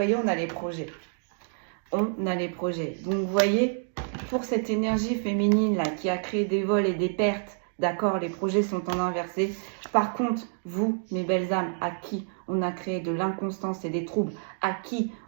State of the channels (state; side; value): silent; left; digital silence